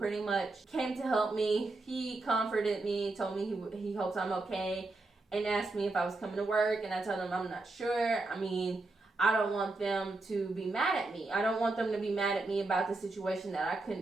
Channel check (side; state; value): left; quieter; 3.2 dB